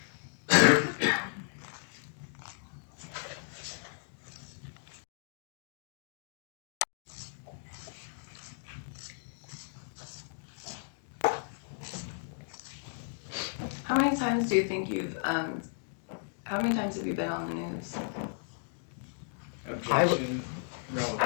How many times do you think how many times have you been on the news? Objection,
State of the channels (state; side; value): silent; right; digital silence